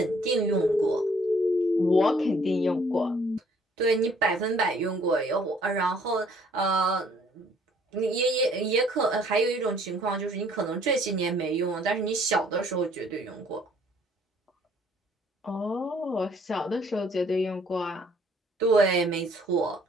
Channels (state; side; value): normal; both; correlation 0.61